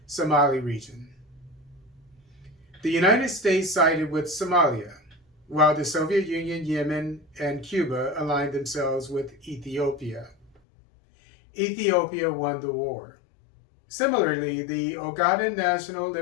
Somali region. The United States sided with Somalia, while the Soviet Union, Yemen, and Cuba aligned themselves with Ethiopia. Ethiopia won the war. Similarly, the Ogaden National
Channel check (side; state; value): right; drops out; at 10.5 s